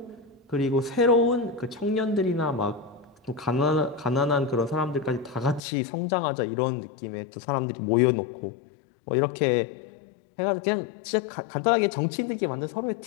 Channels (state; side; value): drops out; right; at 5.6 s